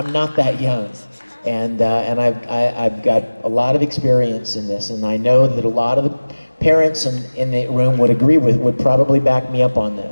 not that young. And I've got a lot of experience in this, and I know that a lot of the parents in the room would probably back me up on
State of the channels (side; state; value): both; inverted; correlation -1.00